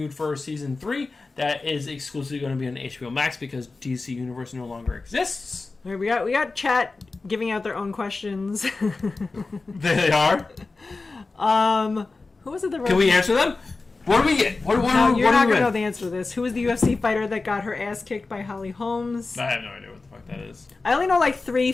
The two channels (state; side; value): quieter; right; 3.7 dB